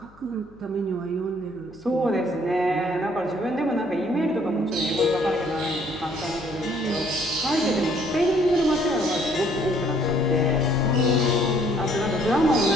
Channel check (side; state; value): left; noise; hum, 27 dB below the sound